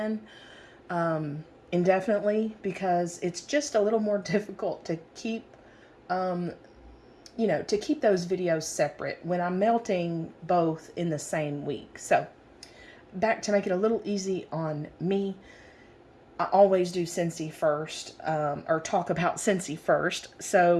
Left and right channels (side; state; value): both; identical; correlation 1.00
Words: indefinitely, because it's just a little more difficult to keep to keep those videos separate when I'm melting both in the same week. So back to make it a little easy on me, I always do Scentsy first, or talk about Scentsy first.